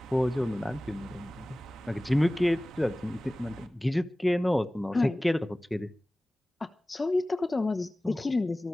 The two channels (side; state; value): both; normal; correlation 0.98